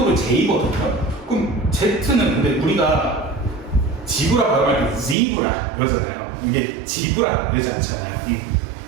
J거든요. 그럼 Z는 근데 우리가 지브라 발음할 때 지브라 이러잖아요. 이게 지브라 이러지 않잖아요.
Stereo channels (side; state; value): left; drops out; at 5.2 s